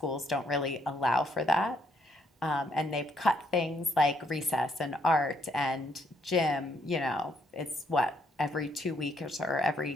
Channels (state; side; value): normal; both; correlation 0.72